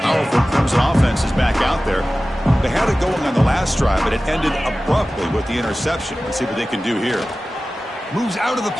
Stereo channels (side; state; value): both; normal; correlation 0.96